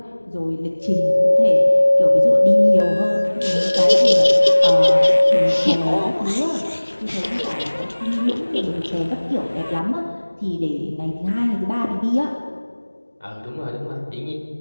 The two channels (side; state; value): both; inverted; correlation -1.00